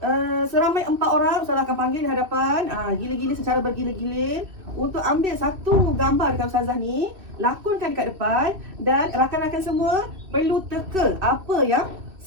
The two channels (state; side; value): late; left; 2.6 ms